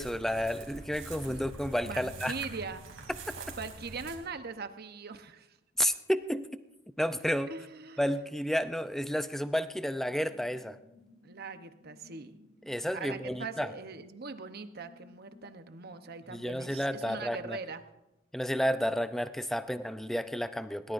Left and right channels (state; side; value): normal; both; correlation 0.83